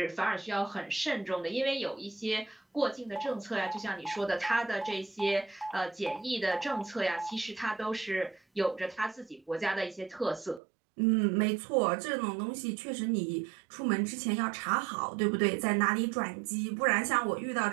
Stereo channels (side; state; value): left; drops out; at 10.6 s